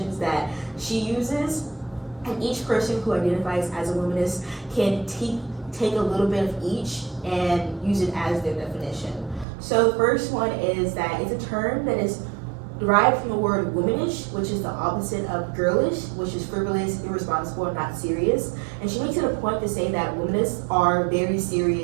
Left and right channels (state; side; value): drops out; left; at 9.5 s